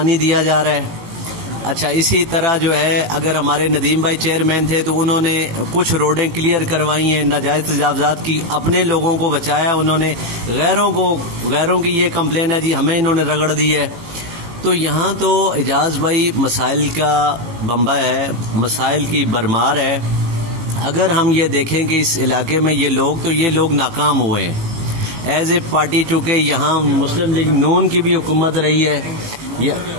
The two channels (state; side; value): late; left; 18 ms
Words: दिया जा रहा है। अच्छा, इसी तरह जो है अगर हमारे नदीम भाई चेयरमैन थे तो उन्होंने कुछ रोडें क्लियर करवाई हैं, नाजायज़ तजावज़ात की, अपने लोगों को बचाया उन्होंने, गैरों की ये कंप्लेन है जी हमें इन्होंने रगड़ दी है। तो यहाँ तो एजाज भाई मसाइल का बम्बा है, मसाइल की भरमार है। अगर हम ये देखें कि इस इलाके में ये लोग नाकाम हुए हैं एज ए पार्टी, चूँकि यहाँ मुस्लिम लीग नून की भी हुकूमत रही है,